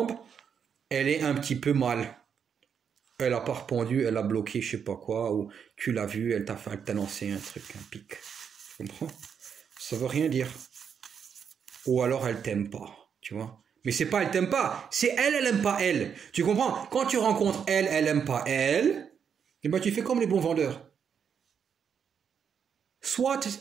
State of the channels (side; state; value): left; quieter; 7.3 dB